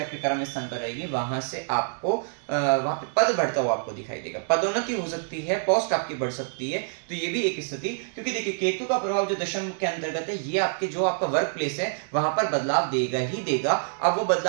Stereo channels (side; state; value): left; silent; digital silence